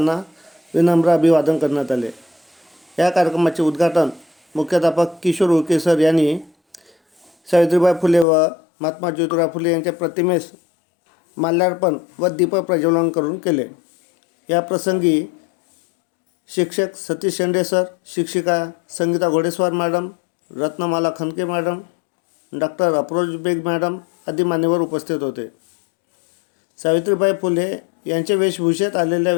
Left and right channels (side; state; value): right; drops out; at 8.2 s